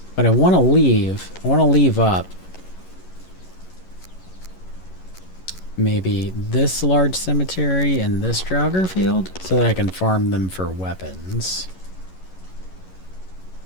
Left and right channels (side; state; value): right; late; 11 ms